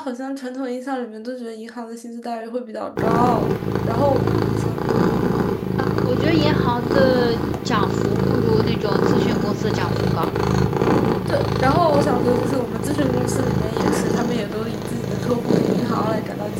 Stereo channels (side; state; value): both; identical; correlation 1.00